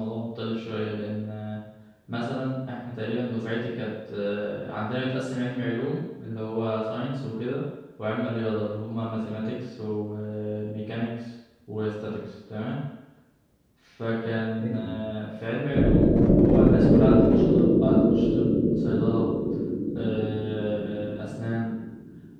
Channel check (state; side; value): identical; both; correlation 1.00